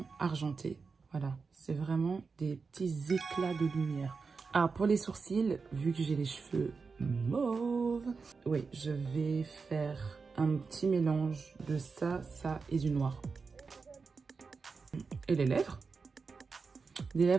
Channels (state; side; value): quieter; left; 4.8 dB